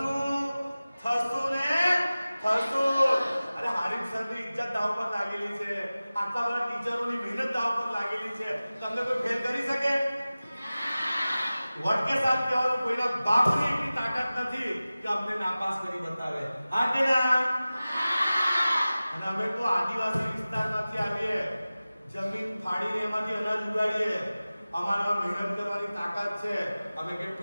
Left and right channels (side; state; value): both; inverted; correlation -0.97